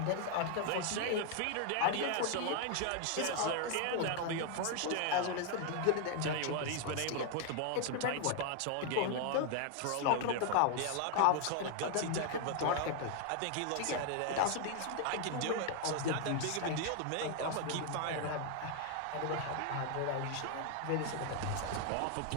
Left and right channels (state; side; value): different; both; correlation 0.00